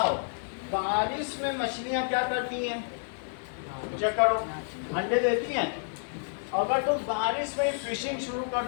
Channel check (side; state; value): right; silent; 56 dB below the other